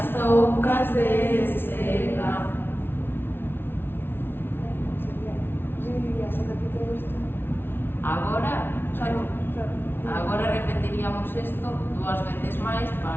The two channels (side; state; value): right; late; 0.11 ms